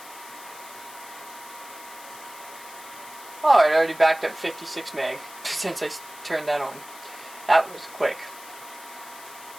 Oh, it already backed up 56 meg since I turned that on. That was quick.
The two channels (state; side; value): noise; left; hiss, 17 dB below the sound